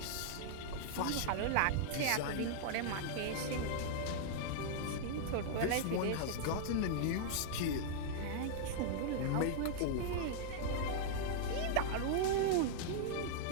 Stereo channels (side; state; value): both; different; correlation -0.01